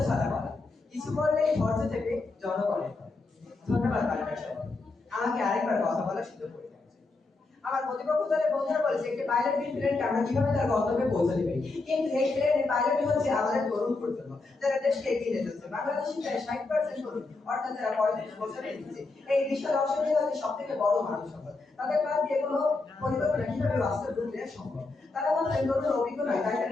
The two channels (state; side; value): quieter; right; 3.5 dB